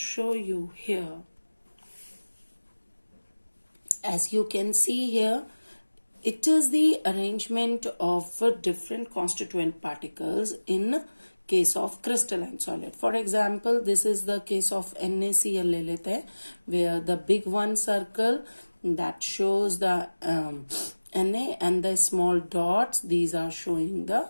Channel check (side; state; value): both; inverted; correlation -1.00